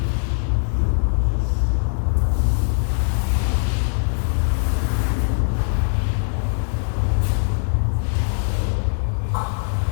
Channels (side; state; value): right; silent; digital silence